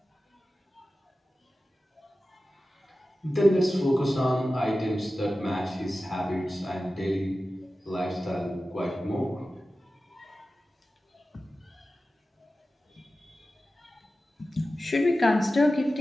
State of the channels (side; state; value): both; normal; correlation 0.94